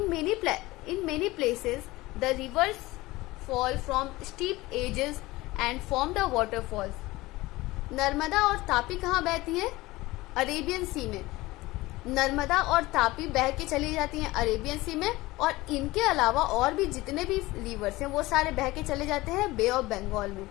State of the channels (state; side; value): quieter; right; 19.6 dB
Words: many places, the rivers fall from steep edges and form the waterfalls. Narmada और तापी कहाँ बहती है? अरेबियन सी में। नर्मदा और तापी बह के चली जाती हैं अरेबियन सी में, और इनके अलावा और भी जितने भी रिवर्स हैं वो सारे बह के चले जाते हैं बे ऑफ बंगाल में।